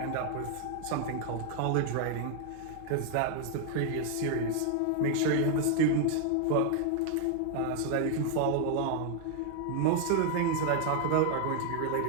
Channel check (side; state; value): both; different; correlation 0.00